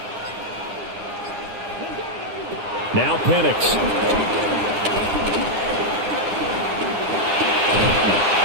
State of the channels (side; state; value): left; late; 9.8 ms